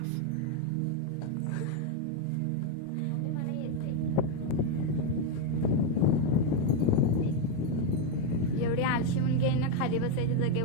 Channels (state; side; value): different; both; correlation 0.02